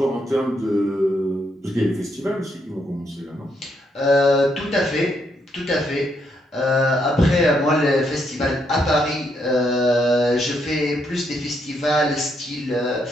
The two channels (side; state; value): both; normal; correlation 0.76